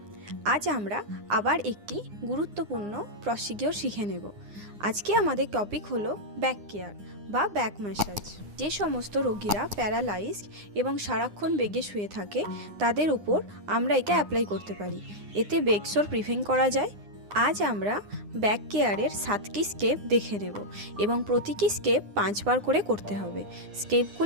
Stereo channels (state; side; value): late; left; 9.8 ms